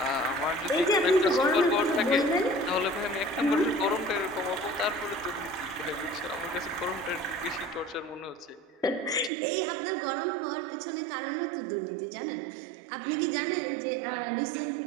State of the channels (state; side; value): drops out; left; at 9.3 s